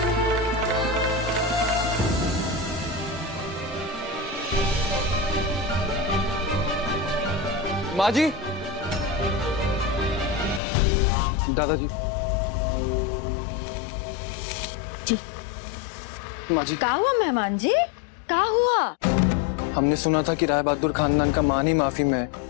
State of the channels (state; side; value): drops out; right; at 10.6 s